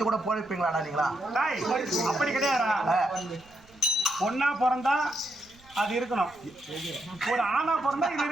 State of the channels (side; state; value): right; noise; rumble, 28 dB below the sound